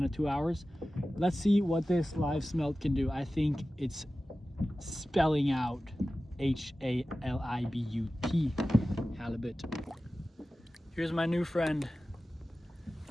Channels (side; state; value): both; normal; correlation 0.95